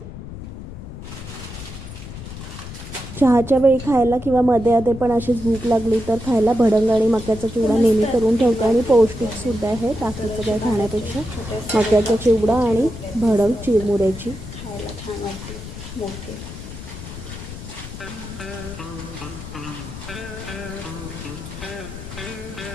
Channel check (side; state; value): left; noise; rumble, 11 dB below the sound